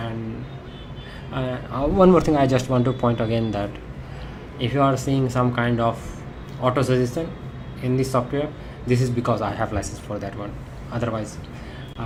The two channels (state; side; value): identical; both; correlation 1.00